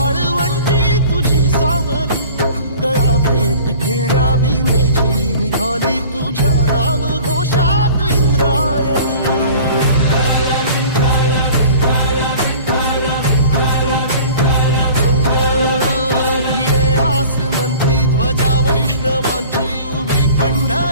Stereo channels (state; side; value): inverted; both; correlation -0.44